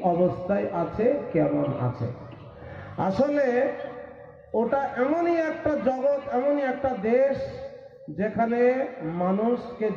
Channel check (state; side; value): identical; both; correlation 1.00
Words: অবস্থায় আছে, কেমন আছে। আসলে ওটা এমনই একটা জগৎ, এমনই একটা দেশ, যেখানে মানুষকে